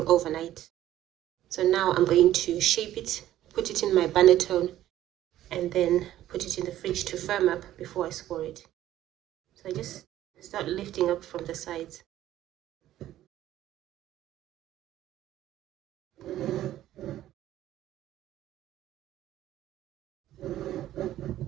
overnight. So now I'm going to shape it, put it in my banetone, and then put it in the fridge to firm up before I score it. So I just start lifting up from the sides.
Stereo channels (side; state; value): left; quieter; 13.2 dB